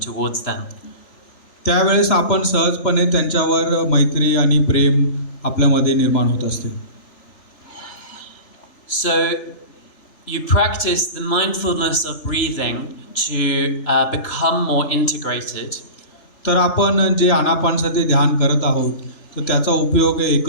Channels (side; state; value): right; late; 3.0 ms